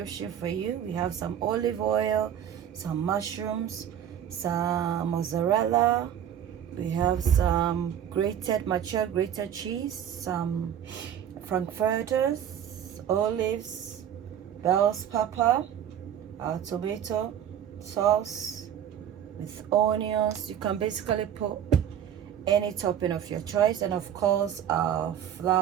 for you. We have some olive oil, some mushrooms, some mozzarella, we have some mature grated cheese, some Frankfurters, olives, bell's pepper, tomato sauce with onions. You can basically put any topping of your choice, and of course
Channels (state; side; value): quieter; left; 9.6 dB